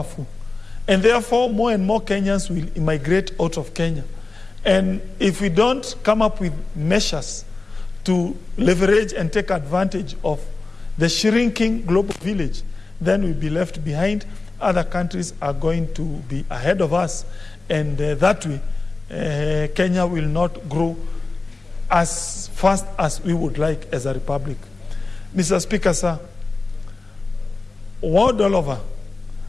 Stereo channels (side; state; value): right; quieter; 3.6 dB